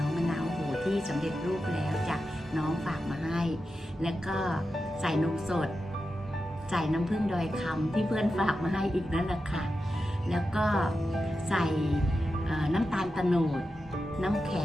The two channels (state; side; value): normal; both; correlation 0.90